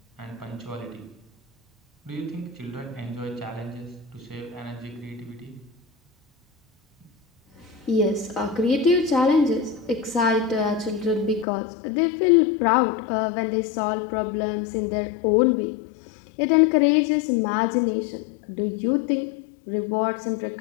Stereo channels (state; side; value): drops out; right; at 11.5 s